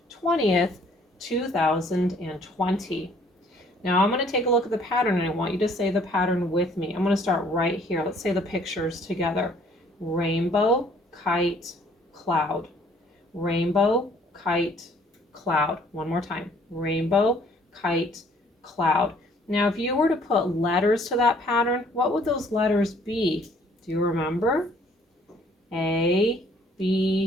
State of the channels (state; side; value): normal; both; correlation 0.60